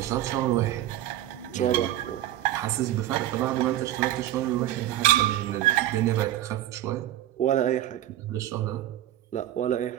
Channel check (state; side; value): quieter; left; 13.1 dB